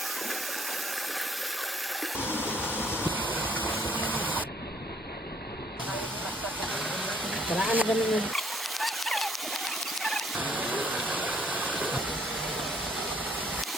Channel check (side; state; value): both; normal; correlation 0.64